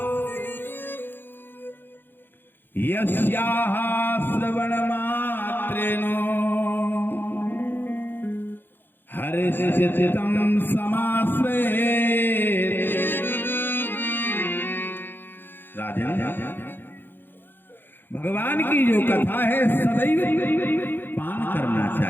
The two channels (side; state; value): right; late; 0.097 ms